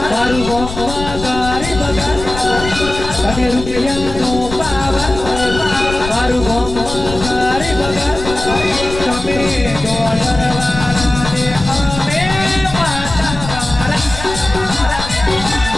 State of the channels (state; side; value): noise; left; rumble, 9 dB below the sound